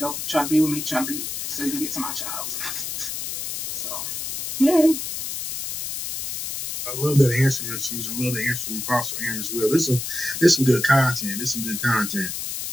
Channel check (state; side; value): noise; left; hiss, 5 dB below the sound